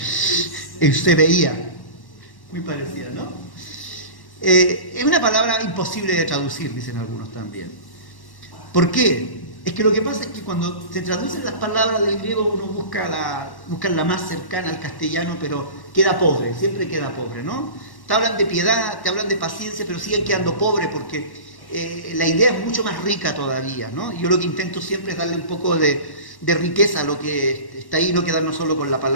Eusebeía, muy parecida, ¿no? Es una palabra imposible de traducir, dicen algunos también. ¿Por qué? Es que lo que pasa es que cuando se traducen las palabras del griego uno busca la más cercana al castellano, pero queda pobre, siempre queda pobre, ¿no? te hablan de piedad, te hablan de paciencia, pero siguen quedando pobres porque la idea es mucho más rica todavía, ¿no? Yo lo que intento siempre es darle un poco de riqueza a lo que está ahí, no quedarnos solo con la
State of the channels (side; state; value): right; late; 1.1 ms